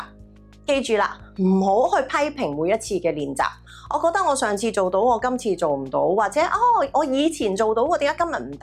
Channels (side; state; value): both; identical; correlation 1.00